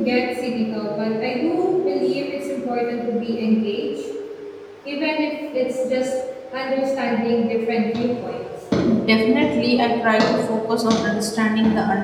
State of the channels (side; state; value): both; identical; correlation 1.00